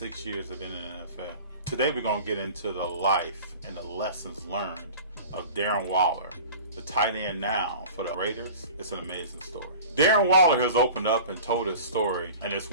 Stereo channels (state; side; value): inverted; both; correlation -0.39